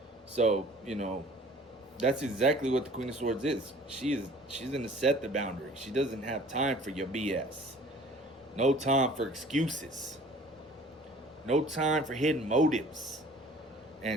So, you know, that's exactly what the Queen of Swords is. She's going to set the boundary. She doesn't have time for your BS. No time for excuses. No time for hidden motives.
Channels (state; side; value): normal; both; correlation 0.50